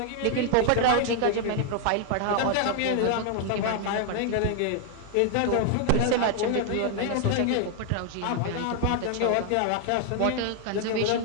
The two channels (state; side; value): different; both; correlation 0.00